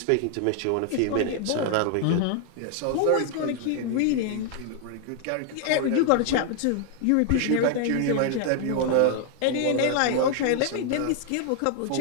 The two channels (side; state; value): both; different; correlation 0.00